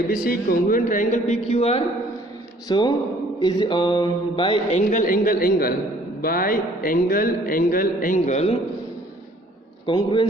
B C congruent triangle P Q R, so is by angle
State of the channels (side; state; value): both; normal; correlation 0.57